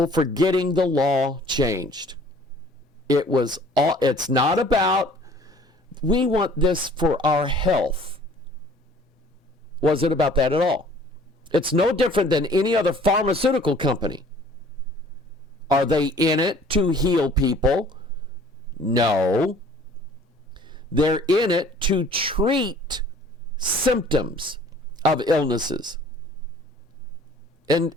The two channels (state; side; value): normal; both; correlation 0.53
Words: for getting the law changed. It's not about, we want this for our health. Wasn't about that at all. It's no different than any other pharmaceutical company. Are they in it to heal people? No. They're in it to treat symptoms of illnesses. And